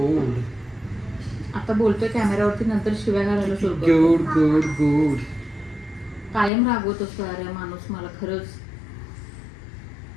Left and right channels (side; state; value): right; drops out; at 6.5 s